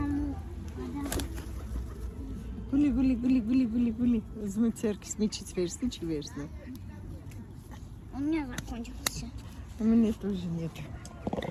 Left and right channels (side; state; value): both; identical; correlation 1.00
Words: գուլի, ուզում եմ ձերքս միջից վերցնի, չի վերցնի, У меня закончился. у меня тоже нет.